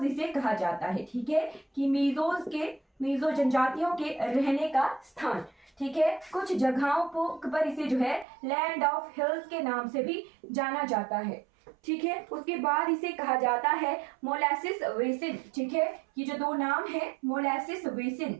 इसे कहा जाता है। ठीक है, कि मिजो जनजातियों के रहने का स्थान। ठीक है, कुछ जगहों पर इसे जो है लैंड ऑफ हिल्स के नाम से भी जाना जाता है। ठीक है, उसके बाद इसे कहा जाता है मोलासिस बेसिन। ठीक है, ये जो दो नाम है मोलासिस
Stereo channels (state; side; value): drops out; left; at 8.2 s